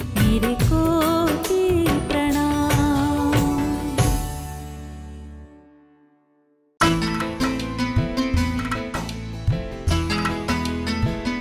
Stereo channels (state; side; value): identical; both; correlation 1.00